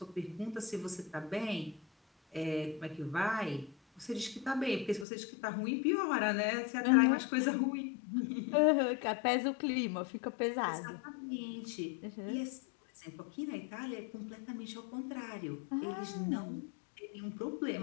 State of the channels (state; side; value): drops out; right; at 5.1 s